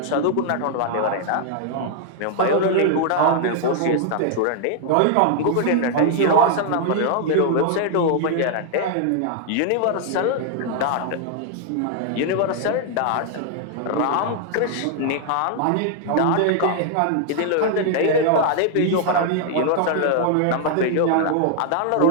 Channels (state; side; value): different; both; correlation 0.00